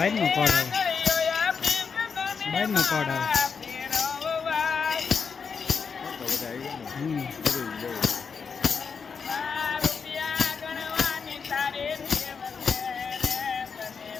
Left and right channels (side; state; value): right; quieter; 5.8 dB